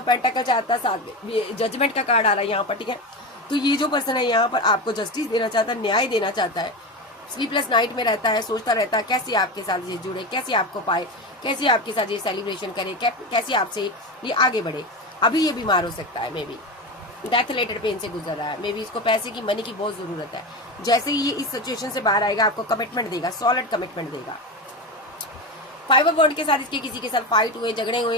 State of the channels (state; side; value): normal; both; correlation 0.21